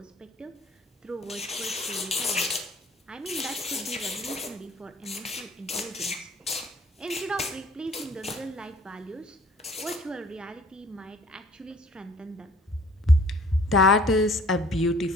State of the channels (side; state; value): both; normal; correlation 0.54